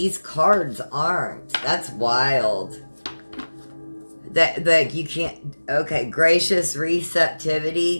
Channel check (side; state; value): both; inverted; correlation -1.00